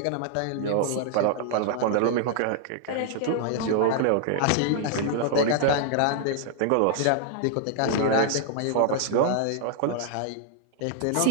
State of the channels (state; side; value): different; both; correlation -0.01